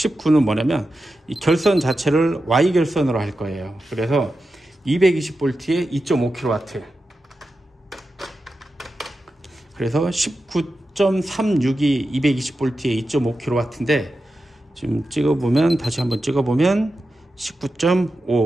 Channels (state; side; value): normal; both; correlation 0.91